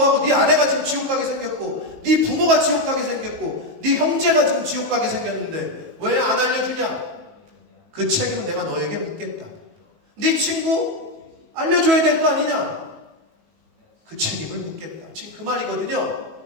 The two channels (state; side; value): late; left; 18 ms